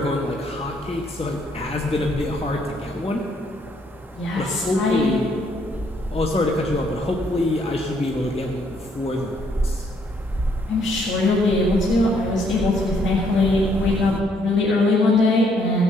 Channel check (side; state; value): both; normal; correlation 0.69